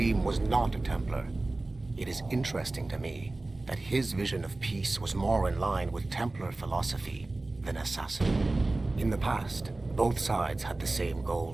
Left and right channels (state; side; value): quieter; left; 3.0 dB